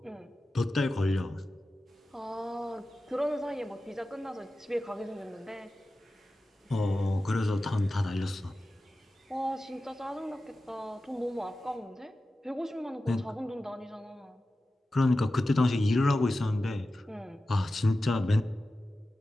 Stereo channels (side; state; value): both; normal; correlation 0.94